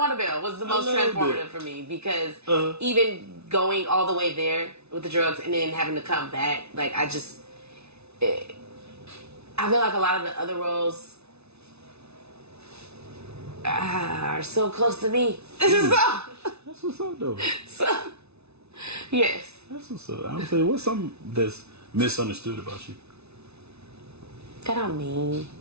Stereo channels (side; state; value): left; late; 0.80 ms